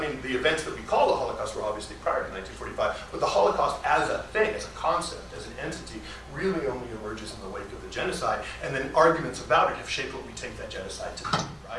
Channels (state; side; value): identical; both; correlation 1.00